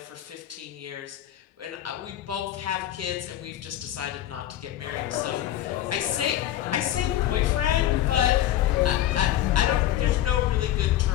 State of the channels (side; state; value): right; quieter; 12.6 dB